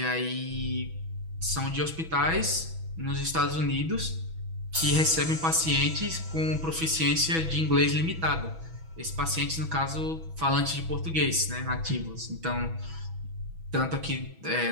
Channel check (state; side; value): late; left; 6.1 ms